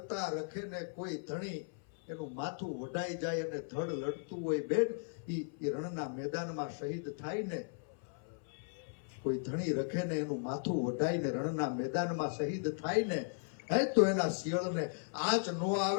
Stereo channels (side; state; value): right; silent; 53 dB below the other